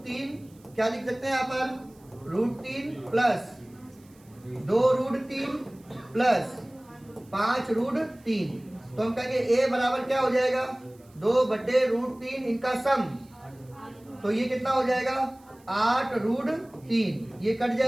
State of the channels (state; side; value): noise; right; hiss, 30 dB below the sound